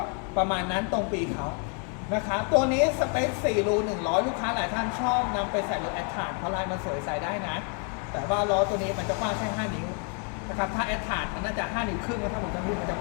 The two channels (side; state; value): right; quieter; 37.6 dB